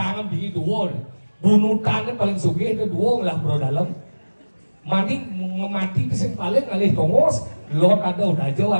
di dua. Bunutannya paling sugih itu dua lah bro dalam. Mandi ngemati kesing paling ngalih tongos. Lot ada udah jauh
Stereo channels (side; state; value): both; inverted; correlation -1.00